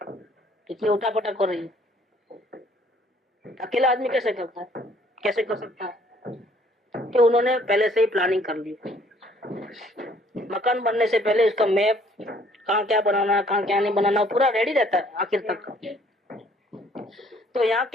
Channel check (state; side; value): normal; both; correlation 0.61